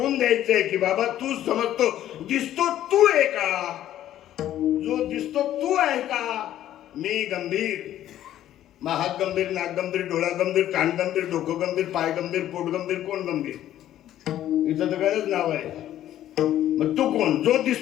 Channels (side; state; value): right; quieter; 12.3 dB